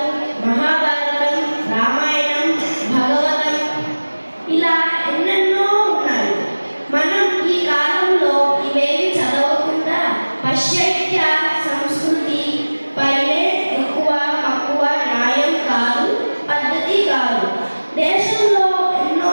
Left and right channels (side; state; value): both; inverted; correlation -1.00